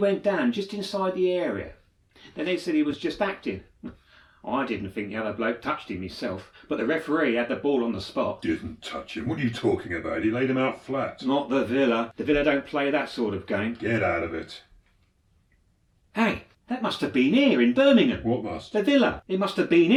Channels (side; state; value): both; identical; correlation 1.00